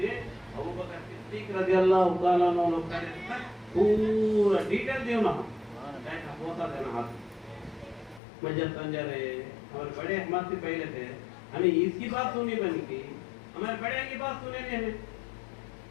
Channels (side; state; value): right; drops out; at 8.2 s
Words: अबू बकर सिद्दीक रज़ियल्लाहु ताला अन्हु लोग करे पूरा डिटेल दियो ना कैसा होता है ना हाथ में जब समझा रहे हमारे बड़े हमारे से पहले थे हमें इसकी बात सुनी बनी की हमारे बड़े की बात सुने नहीं हमें